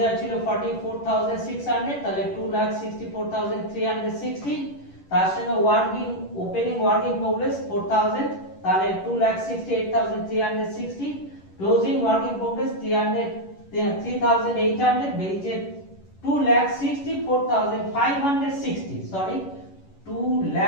ছিল 44,600, তাহলে 2,64,360, তার সঙ্গে ওপেনিং ওয়ার্ক ইন প্রোগ্রেস 4,000, তাহলে 2,68,360, ক্লোজিং ওয়ার্ক ইন প্রোগ্রেস 3,800, বেরিয়েছে 2,64,560, সরি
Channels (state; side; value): late; right; 11 ms